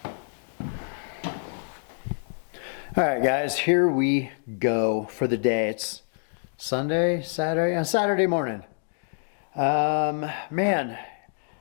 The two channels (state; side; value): silent; right; digital silence